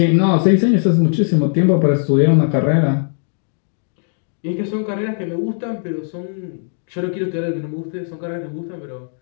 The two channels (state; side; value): silent; right; digital silence